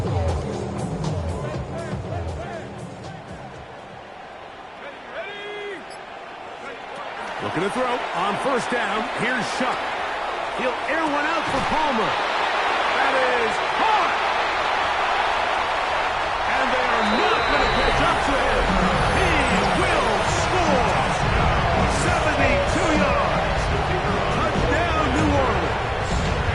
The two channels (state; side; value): identical; both; correlation 1.00